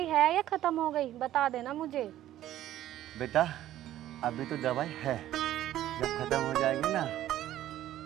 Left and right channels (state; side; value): quieter; left; 13.2 dB